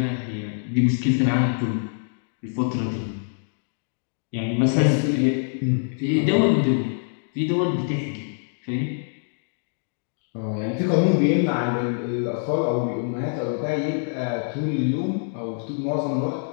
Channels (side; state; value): right; silent; digital silence